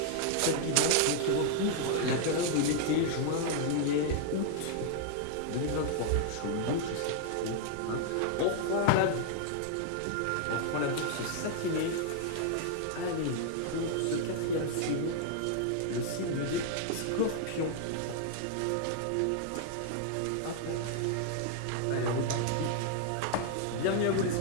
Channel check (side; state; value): both; different; correlation 0.00